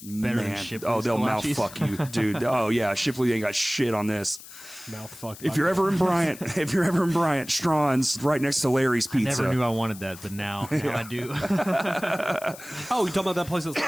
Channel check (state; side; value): noise; left; hiss, 17 dB below the sound